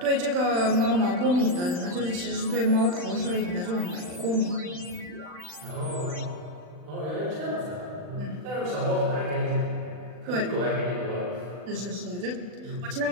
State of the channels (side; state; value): left; late; 40 ms